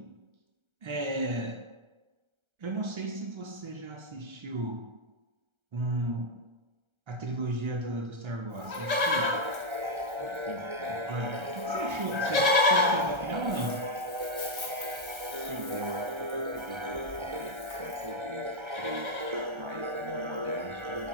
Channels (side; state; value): left; late; 1.3 ms